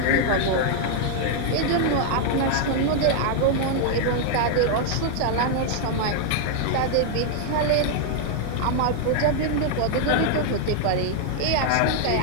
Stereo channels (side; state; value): both; different; correlation 0.00